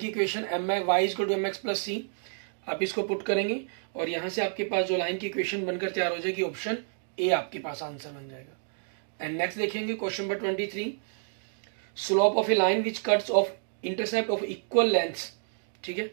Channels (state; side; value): silent; left; digital silence